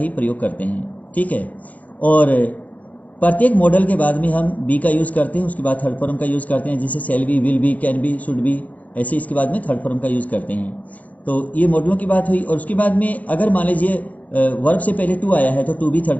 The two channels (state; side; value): late; right; 0.075 ms